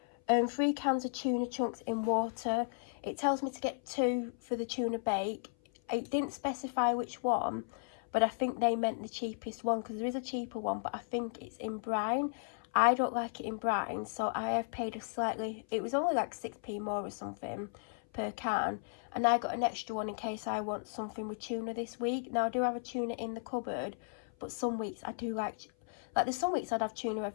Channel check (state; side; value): silent; right; 54 dB below the other